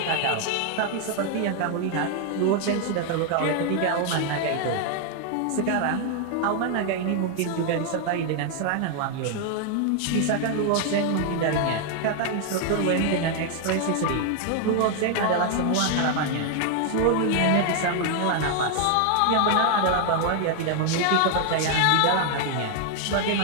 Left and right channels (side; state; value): both; different; correlation 0.00